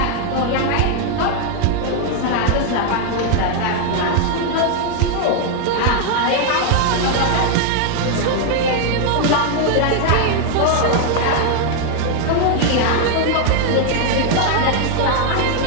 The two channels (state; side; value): different; both; correlation 0.00